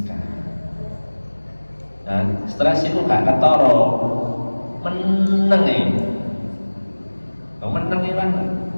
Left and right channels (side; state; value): both; inverted; correlation -1.00